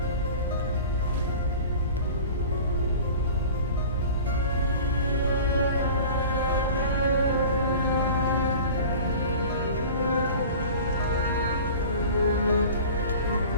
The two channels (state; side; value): inverted; both; correlation -0.39